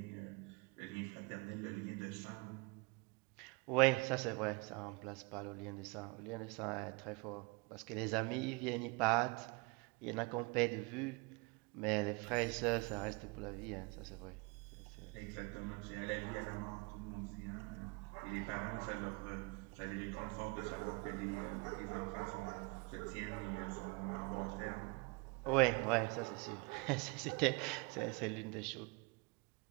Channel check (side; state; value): left; quieter; 28.4 dB